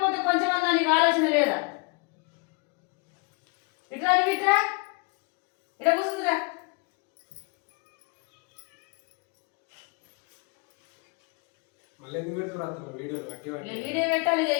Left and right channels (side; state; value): right; quieter; 29.9 dB